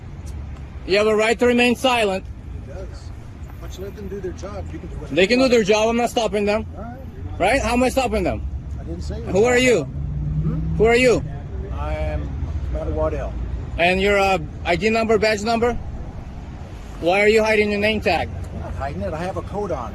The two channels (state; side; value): identical; both; correlation 1.00